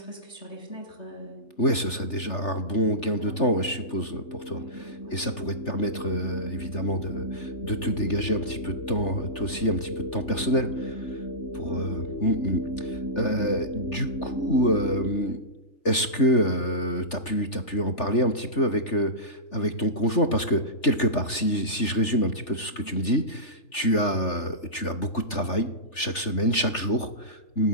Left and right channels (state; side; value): late; right; 3.4 ms